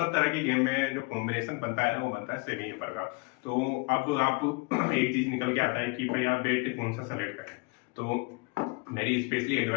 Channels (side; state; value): right; quieter; 28.9 dB